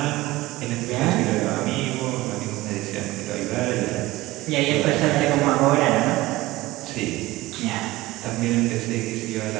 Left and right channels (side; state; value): left; quieter; 18.5 dB